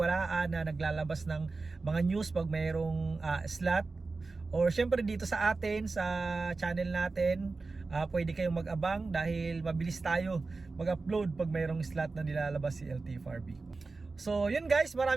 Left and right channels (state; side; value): quieter; left; 3.8 dB